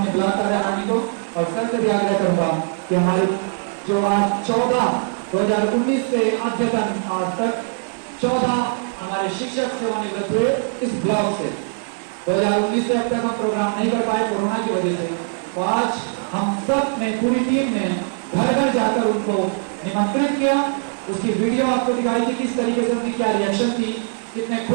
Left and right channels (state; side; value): silent; left; 65 dB below the other